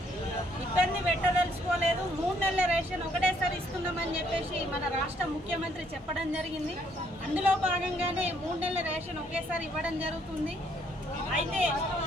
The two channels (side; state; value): both; normal; correlation 0.68